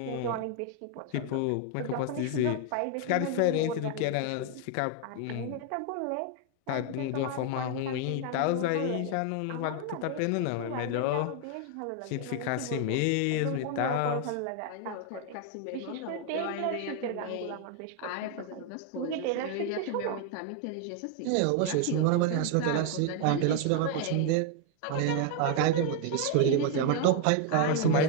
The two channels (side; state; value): both; different; correlation 0.00